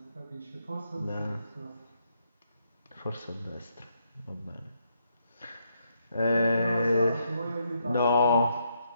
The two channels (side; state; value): both; inverted; correlation -0.76